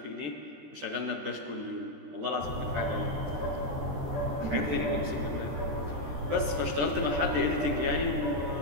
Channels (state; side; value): late; left; 13 ms